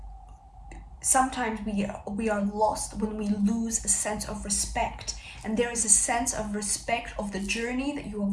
sometimes we are lost when we lose a sense of respect. And there is a sense of respect of the journey that you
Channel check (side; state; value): both; identical; correlation 1.00